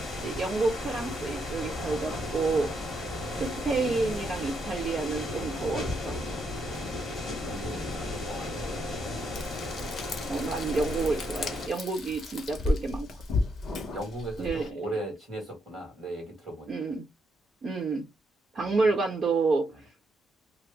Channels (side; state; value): both; normal; correlation 0.77